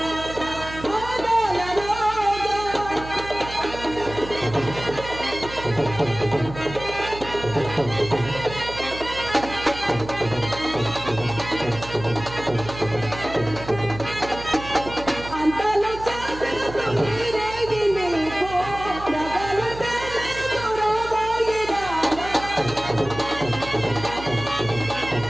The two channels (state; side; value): noise; right; hum, 13 dB below the sound